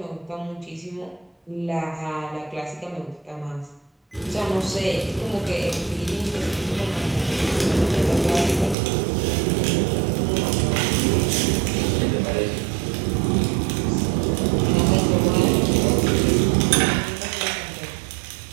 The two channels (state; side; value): drops out; left; at 8.8 s